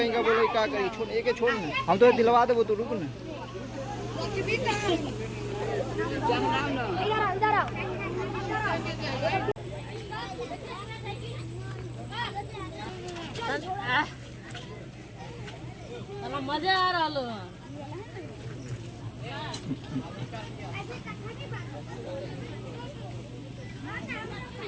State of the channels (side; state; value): both; identical; correlation 1.00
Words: का बोले का करी छोड़ एक छोड़ ना हम तो दिलवा देबो तो रुक ना मजा आ रहा